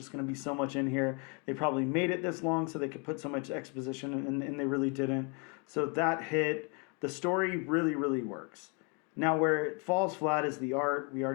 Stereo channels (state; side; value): quieter; right; 35.1 dB